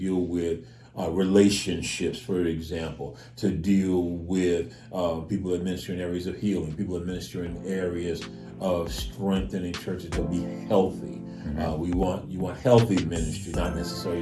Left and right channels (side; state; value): both; identical; correlation 1.00